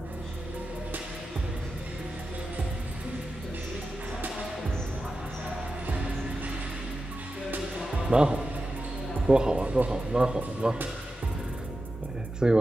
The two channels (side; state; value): both; normal; correlation 0.92